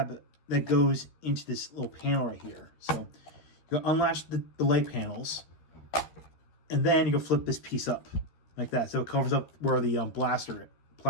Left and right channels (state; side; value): late; right; 13 ms